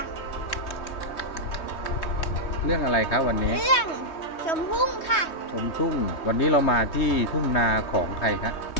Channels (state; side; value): late; right; 3.2 ms